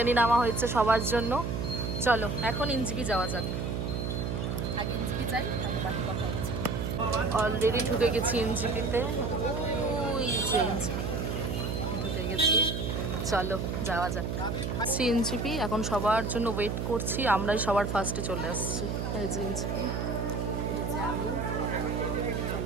নেওয়া হয়েছে সবার জন্য। চলো এখন এনজিপি যাওয়া যাক। আগে এনজিপি যাই, তারপর বাকি কথা হচ্ছে। অলরেডি ঢুকে গেছি এনজিপিতে। ওই যে এনজিপি ঢুকে গেছি, চলো যাওয়া যাক। এনজিপি এখন সবার জন্য ওয়েট করছি। আমরাই সবার ফার্স্টে চলে আসছি। এই যে এনজিপি, আমি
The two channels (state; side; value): noise; right; hum, 2 dB below the sound